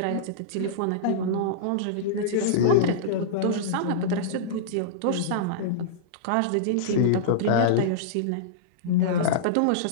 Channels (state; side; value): different; both; correlation -0.03